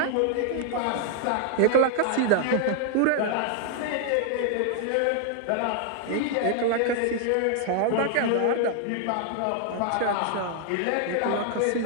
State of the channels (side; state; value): both; different; correlation 0.00